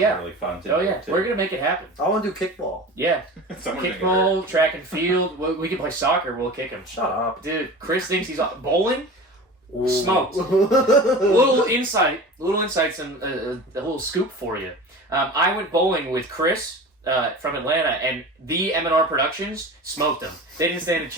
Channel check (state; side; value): normal; both; correlation 0.35